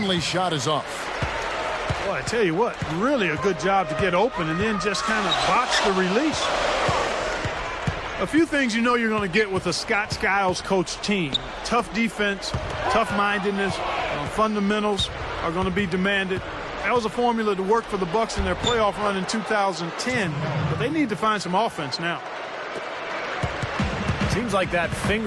shot is off. Boy, I tell you what, really a good job to get open and then just kind of box the release. A few things you know you're going to get with a Scott Skiles coach team. Tough defense, tough-mindedness, fundamentals are going to be demanded. That was a formula to work for the Bucks in their playoff run in 2010, but they need to find some offense now. Seems like that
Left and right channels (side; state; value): both; identical; correlation 1.00